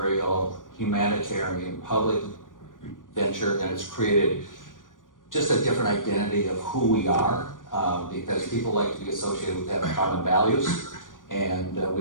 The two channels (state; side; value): late; right; 0.88 ms